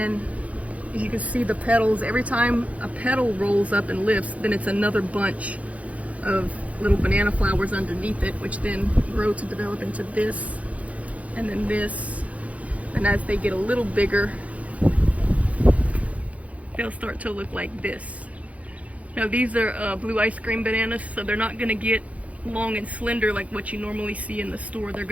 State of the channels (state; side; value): late; left; 0.067 ms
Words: you can see the petals. Every time a petal rolls up and lifts, then it's another bunch of little banana flowers underneath it, which then grow to develop into this, and then this. And as they get a little bigger, they'll start to look like this. Now these are blue ice cream bananas, so they're not gonna get long and slender like what you normally see in the store. They're